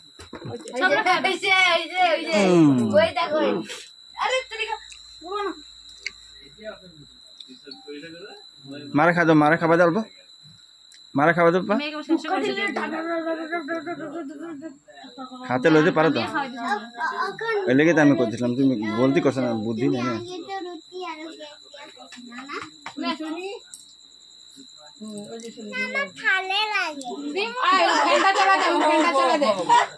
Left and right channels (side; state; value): both; identical; correlation 1.00